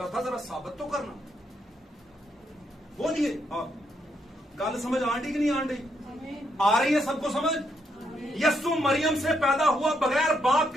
था, जरा साबित तो करना। बोलिए, हाँ, गल समझ आंटी कि नहीं आंटी, आ रही है सबको समझ। यस्सु मरियम से पैदा हुआ बगैर बाप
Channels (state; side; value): normal; both; correlation 0.77